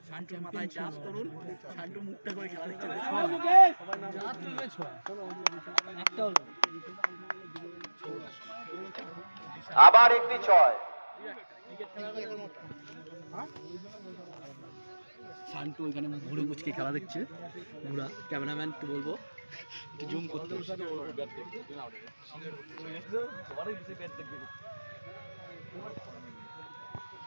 শান্তুর মাথায় চাপ করুন, শান্তু মুখটা করে খেলা দেখতে আবার একটি 6। শান্তু ওইখানে ঘুরে মুচকে খেলা দেখছে, ঘুরা ক্যামেরাম্যান একটু বলবো জুম করতে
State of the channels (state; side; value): inverted; both; correlation -1.00